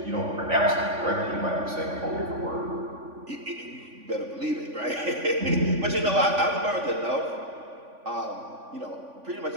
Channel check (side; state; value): left; late; 3.5 ms